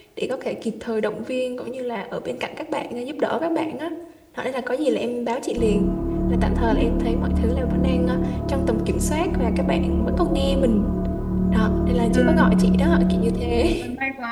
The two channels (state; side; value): identical; both; correlation 1.00